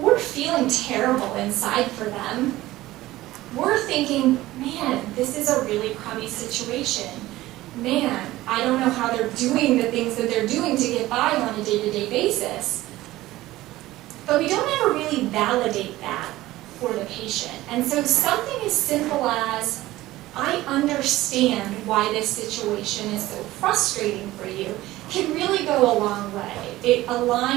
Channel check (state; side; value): quieter; left; 16.8 dB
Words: feeling terrible inside for them. We're thinking, man, this is a really crummy situation. Man, I don't know how they're doing the things that they're doing to get by on a day-to-day basis. But we don't ever really validate that for the patient. And so something as simple as, I understand why this situation is so frustrating for you, can really go a long way. It